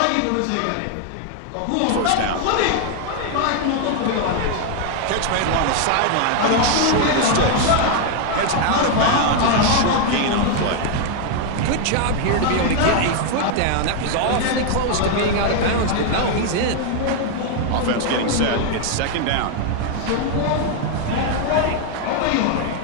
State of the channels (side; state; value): both; different; correlation 0.01